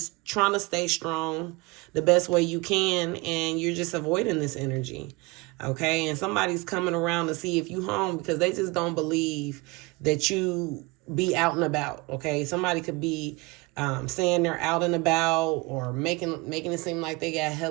trying to stay strong the best way you can, and you're just avoiding this energy. Okay, and somebody's coming around to see if you home because they just don't believe that you be out and about. Okay, somebody could be saying they're out and about, or making it seem like they got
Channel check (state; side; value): quieter; left; 24.7 dB